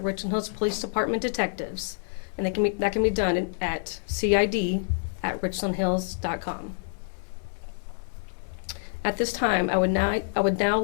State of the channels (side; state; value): right; silent; 60 dB below the other